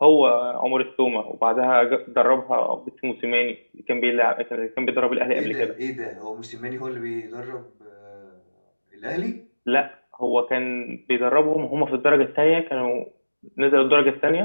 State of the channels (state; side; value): inverted; both; correlation -1.00